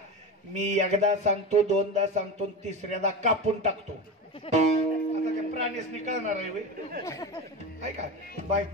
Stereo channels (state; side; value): normal; both; correlation 0.23